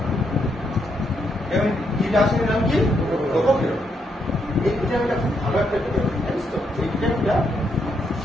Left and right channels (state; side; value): normal; both; correlation 0.78